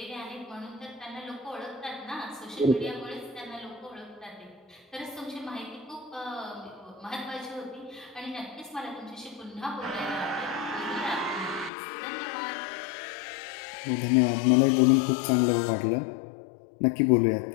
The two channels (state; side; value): drops out; right; at 11.7 s